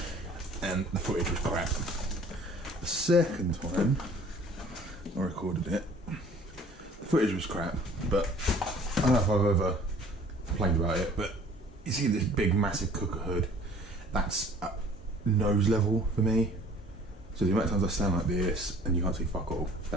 and the footage was crap. The second time I recorded it, the footage was crap, but I don't know if I've ever complained about it, but you see this big massive cooker hood, that's at nose level for me. So the amount of times I stand like this and you can't see fuck all,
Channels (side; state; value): both; normal; correlation 0.52